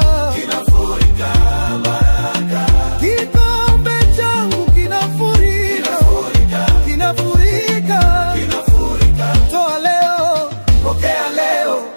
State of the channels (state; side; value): inverted; both; correlation -1.00